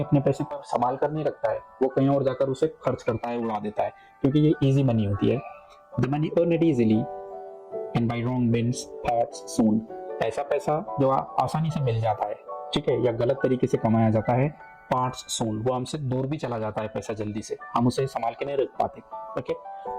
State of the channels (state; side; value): identical; both; correlation 1.00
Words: पैसे को संभाल कर नहीं रखता है, वो कहीं और जाकर उसे खर्च करता है, उड़ा देता है, क्योंकि ये इजी मनी होती है। The money earned easily and by wrong means parts soon, ऐसा पैसा जो आसानी से मिल जाता है, ठीक है, या गलत तरीके से कमाया जाता है, पार्ट्स सून, वो हमसे दूर भी चला जाता है पैसा जल्दी से, हम उसे संभाल के नहीं रख पाते। Okay,